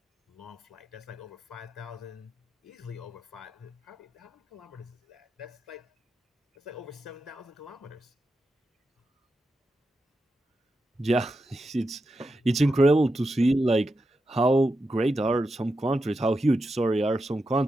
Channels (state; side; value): normal; both; correlation 0.88